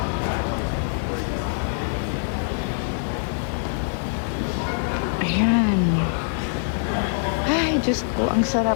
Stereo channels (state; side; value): silent; right; digital silence